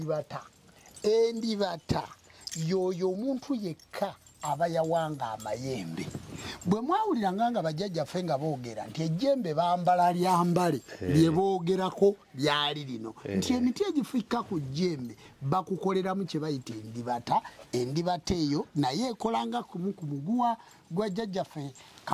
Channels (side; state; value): both; identical; correlation 1.00